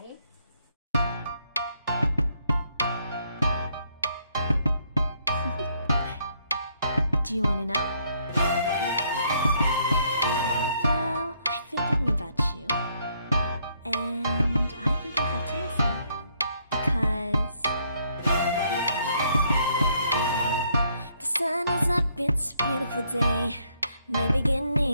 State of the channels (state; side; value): inverted; both; correlation -0.70